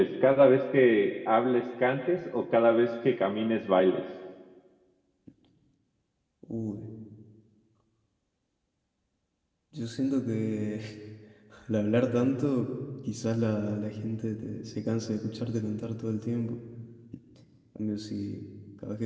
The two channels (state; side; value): identical; both; correlation 1.00